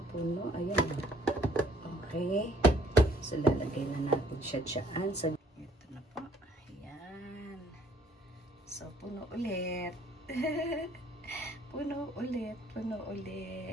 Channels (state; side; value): normal; both; correlation 0.62